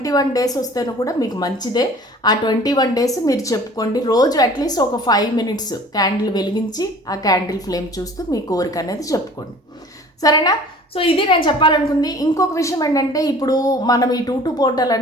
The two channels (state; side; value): normal; both; correlation 0.47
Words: డేస్ వస్తేనే కూడా మీకు మంచిదే. ఆ 21 డేస్ మీరు చెప్పుకోండి. రోజు అట్లీస్ట్ ఒక 5 మినిట్స్ క్యాండిల్ వెలిగించి ఆ క్యాండిల్ ఫ్లేమ్ చూస్తూ మీ కోరిక అనేది చెప్పుకోండి. సరేనా? సో ఇది నేను చెప్పాలనుకుంది. ఇంకొక విషయం ఏంటంటే, ఇప్పుడు మనం ఈ 2 పోర్టల్